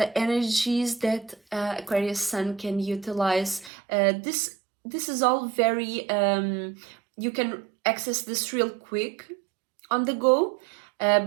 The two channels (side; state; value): left; drops out; at 3.7 s